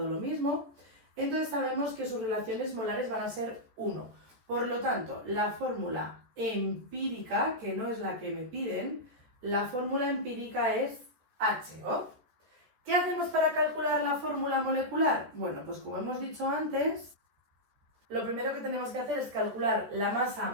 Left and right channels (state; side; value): late; left; 14 ms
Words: lo mismo. Entonces sabemos que sus relaciones molares van a ser 1. Por lo tanto, la fórmula empírica, que no es la que me piden, la fórmula empírica es HO. ¿Qué hacemos para calcular la fórmula molecular? Bueno, pues como hemos dicho antes, lo primero que tenemos que hacer es calcular la masa